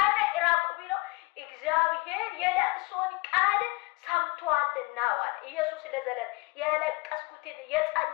እራቁ ቢለው እግዚአብሔር የለቅሶን ቃል ሰምቷልና ዋለ። ኢየሱስ ለዘላለም የለቀስኩትን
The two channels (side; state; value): right; quieter; 24.1 dB